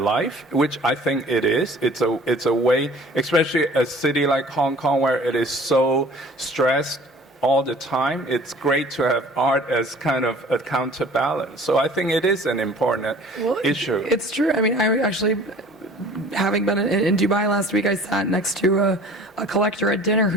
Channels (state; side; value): normal; both; correlation 0.48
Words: which I think it is. It's a way, especially a city like Hong Kong where it is so stressed all the time. It's great to have art as kind of a counterbalance. So I think it is an important issue. It's true. I mean, I actually, having been in Dubai last week, I sat next to a collector at dinner